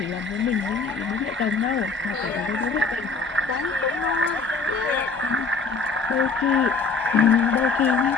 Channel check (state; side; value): quieter; right; 4.1 dB